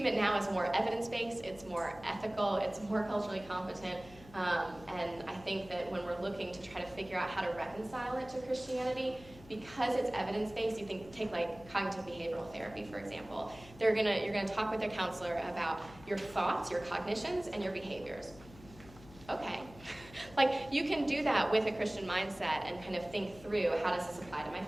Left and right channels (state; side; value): noise; left; hum, 20 dB below the sound